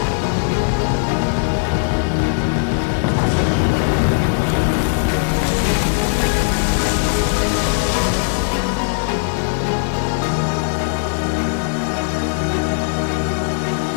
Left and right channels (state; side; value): silent; right; digital silence